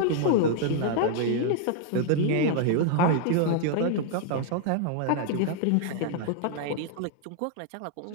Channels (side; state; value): both; different; correlation 0.00